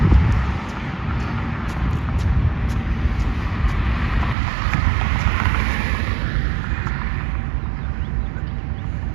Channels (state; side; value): drops out; left; at 4.4 s